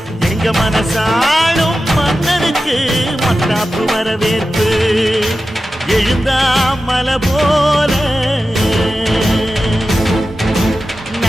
எங்க மனசாளும் மன்னனுக்கு மத்தாப்பு வரவேற்பு எழுந்தா மலை போல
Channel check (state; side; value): normal; both; correlation 0.93